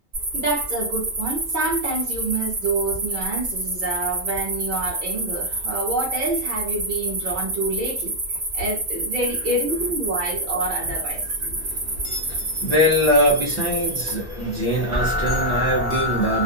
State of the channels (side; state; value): both; normal; correlation -0.03